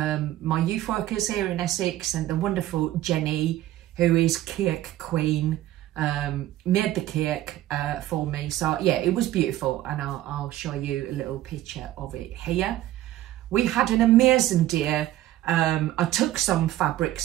my youth workers here in Essex, and the wonderful Jenny, who is cake queen, made the cake for me. So yeah, it was beautiful, and I'll show you a little picture of it here. We had an amazing day. I took some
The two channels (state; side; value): quieter; left; 14.3 dB